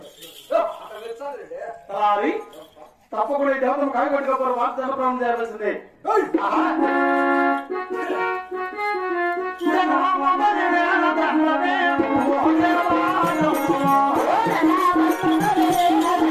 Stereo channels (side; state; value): both; identical; correlation 1.00